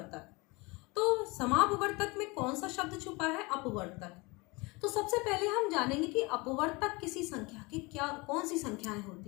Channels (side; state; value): right; quieter; 25.6 dB